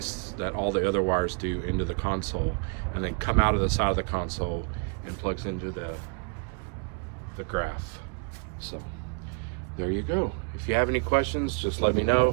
that all the other wires do, into the console, and then come out of the side of the console and plugs into the graph. So there you go. If you have any questions, just let me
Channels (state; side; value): quieter; left; 36.8 dB